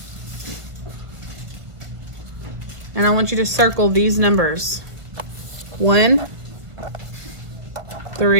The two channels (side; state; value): left; late; 1.5 ms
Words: And I want you to circle these numbers. 1,